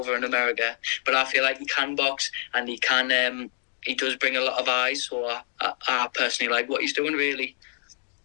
in America, but I feel like he can box, and he does bring a lot of eyes. So I personally like what he's doing, really.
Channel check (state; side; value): silent; right; digital silence